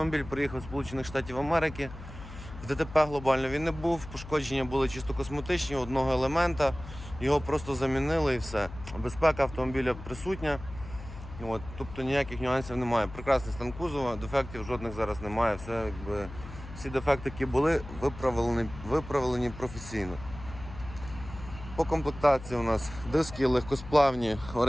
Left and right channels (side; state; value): left; noise; hum, 14 dB below the sound